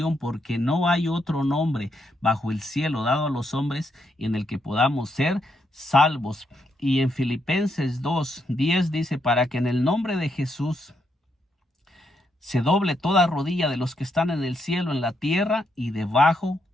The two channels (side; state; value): both; normal; correlation 0.78